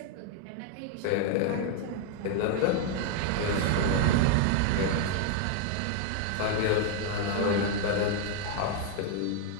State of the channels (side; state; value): both; different; correlation 0.00